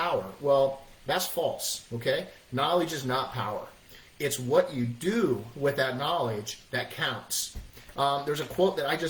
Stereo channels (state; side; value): identical; both; correlation 1.00